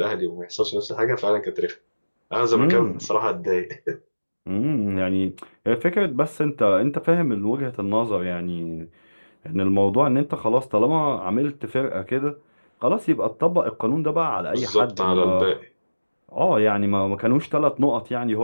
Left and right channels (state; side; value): inverted; both; correlation -1.00